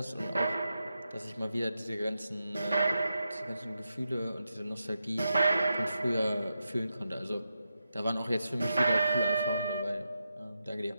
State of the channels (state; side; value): inverted; both; correlation -0.87